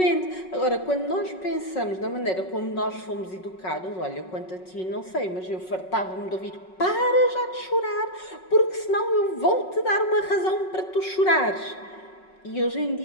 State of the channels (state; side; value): late; right; 5.4 ms